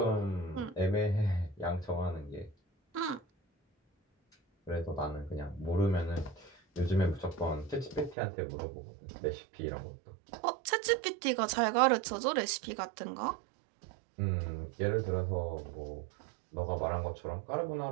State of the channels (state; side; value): drops out; left; at 8.2 s